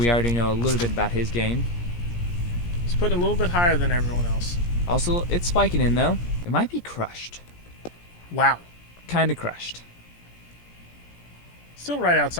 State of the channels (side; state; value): right; late; 17 ms